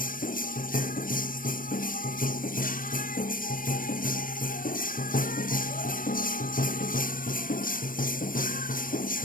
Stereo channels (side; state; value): right; late; 0.40 ms